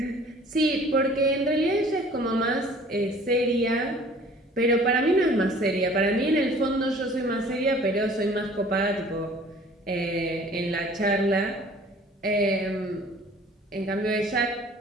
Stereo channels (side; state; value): both; normal; correlation 0.51